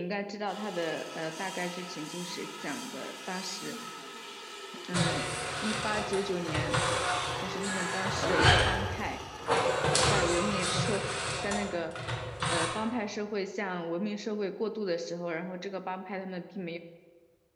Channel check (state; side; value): identical; both; correlation 1.00